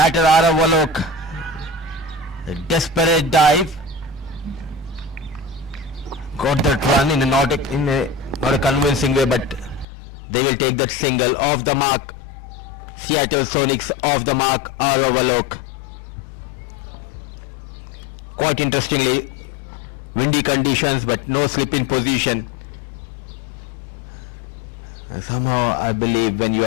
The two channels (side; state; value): right; drops out; at 9.9 s